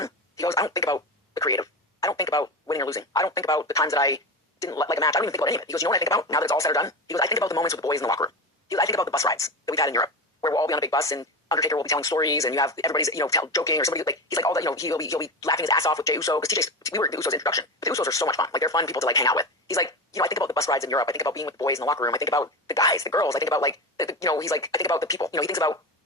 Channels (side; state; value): both; normal; correlation 0.23